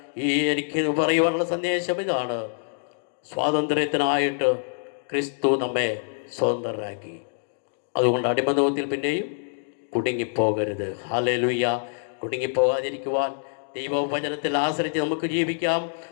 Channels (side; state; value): right; silent; digital silence